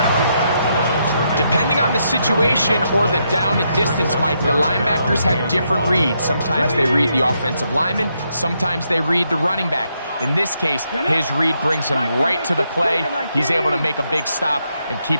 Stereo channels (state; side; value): inverted; both; correlation -0.79